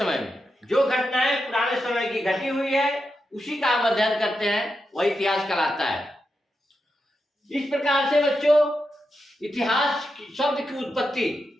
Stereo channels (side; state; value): both; normal; correlation 0.87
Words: में जो घटनाएं पुराने समय की घटी हुई है उसी का हम अध्ययन करते हैं, वही इतिहास कहलाता है। इस प्रकार से बच्चों, इतिहास शब्द की उत्पत्ति